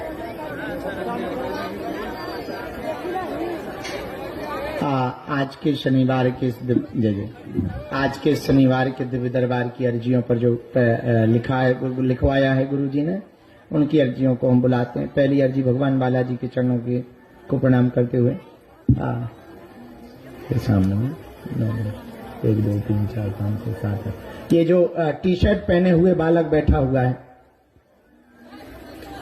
के शनिवार के आज के शनिवार के दिव्य दरबार की अर्जियों पर जो लिखवाया है गुरु जी ने, उनकी अर्जियों को हम बुलाते हैं। पहली अर्जी भगवान बालाजी के चरणों को प्रणाम करते हुए सामने में 1 2 3 4 5 6 7 ये जो टी शर्ट पहने हुए बालक बैठा हुआ है,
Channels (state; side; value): identical; both; correlation 1.00